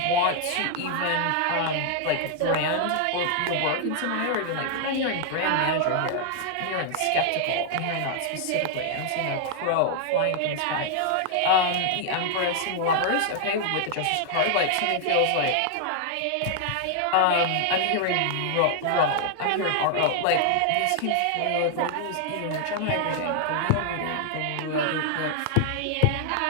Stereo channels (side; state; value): both; different; correlation 0.00